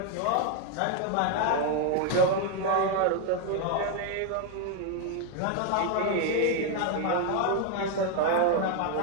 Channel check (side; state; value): both; different; correlation 0.01